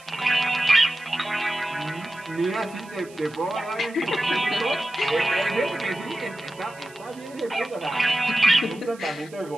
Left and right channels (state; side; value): noise; right; hiss, 23 dB below the sound